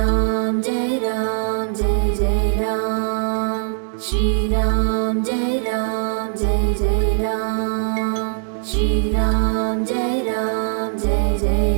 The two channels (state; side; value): silent; left; digital silence